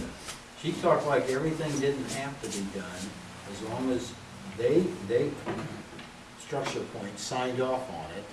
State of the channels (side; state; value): both; identical; correlation 1.00